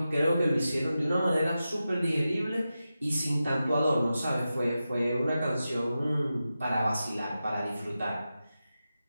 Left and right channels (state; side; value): inverted; both; correlation -0.92